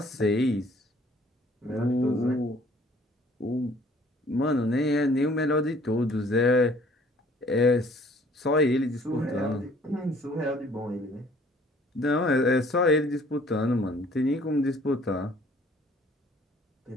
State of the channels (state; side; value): normal; both; correlation 0.57